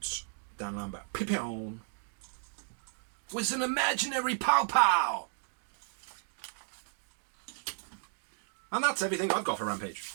Dan Lambert. Pipion was an imaginary pow pow. And that's everything I've got for Rampage.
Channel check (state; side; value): silent; left; digital silence